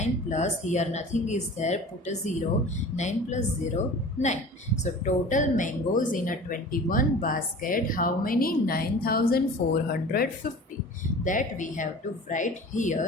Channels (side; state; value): both; normal; correlation 0.40